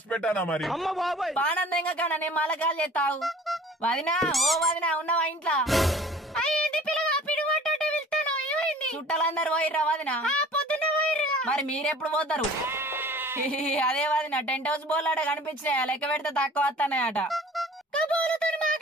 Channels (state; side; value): normal; both; correlation 0.47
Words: పెట్టానా మరి? బానందంగా కన్నా నేను మళ్ళా కాల్ చేస్తావు. వదినా ఓ వదినా ఉన్నావా ఇంట్లో? చుట్టాలందరూ పోయిర్రా వదినా? మరి మీరెప్పుడు పోతారు? అదే వదినా టెంట్ హౌస్ బోర్లు అట కనిపించినాయా? లెక్క పెడితే తక్కువ వస్తానయట.